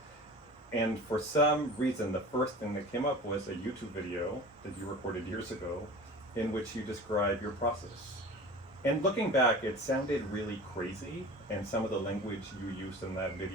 And for some reason, the first thing that came up was a YouTube video that you recorded years ago in which you describe your process. And looking back, it sounded really crazy, and some of the language you used in that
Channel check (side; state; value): both; normal; correlation 0.38